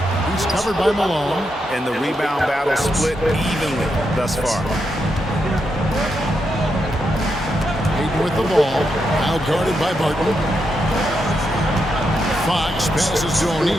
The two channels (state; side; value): normal; both; correlation 0.83